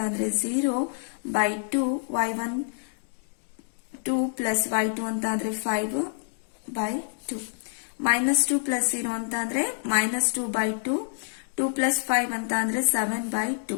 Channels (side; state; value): right; silent; digital silence